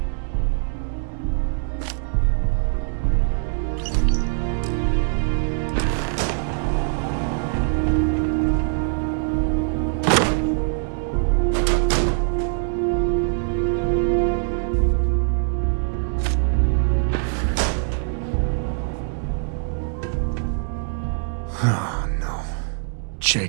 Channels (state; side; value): silent; left; digital silence